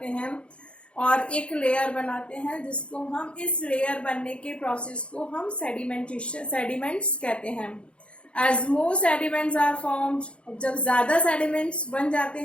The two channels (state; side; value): late; right; 0.058 ms